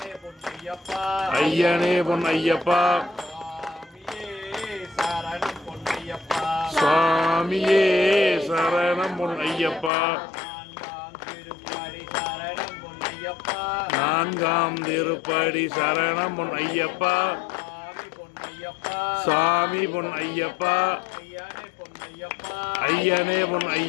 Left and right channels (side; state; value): right; drops out; at 9.9 s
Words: ஐயனே பொன்னையப்பா சுவாமியே சரணம் பொன்னையப்பா நான்காம் திருப்படி சரணம் பொன்னையப்பா சாமி பொன்னையப்பா ஐயனே